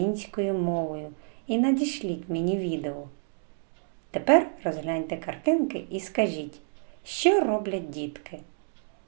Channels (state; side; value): silent; left; digital silence